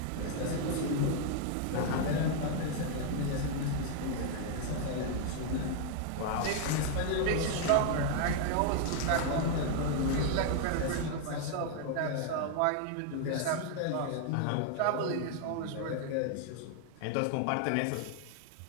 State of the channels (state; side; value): different; both; correlation 0.00